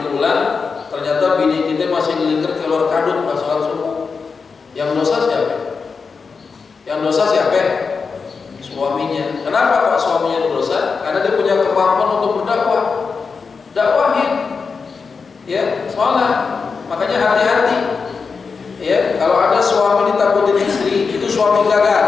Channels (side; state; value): right; quieter; 5.1 dB